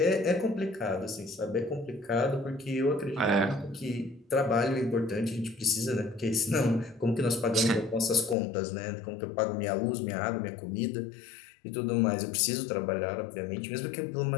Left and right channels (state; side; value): drops out; right; at 8.3 s